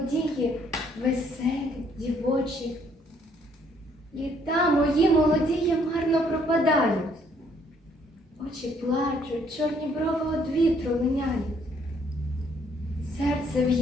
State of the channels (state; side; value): normal; both; correlation 0.66